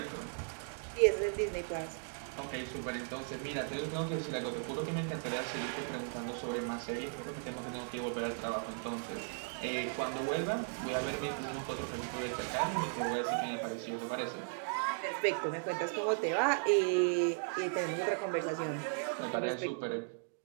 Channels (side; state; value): left; silent; digital silence